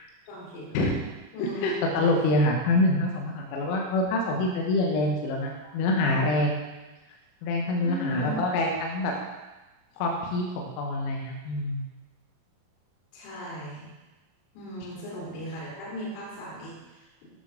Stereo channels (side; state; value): right; late; 33 ms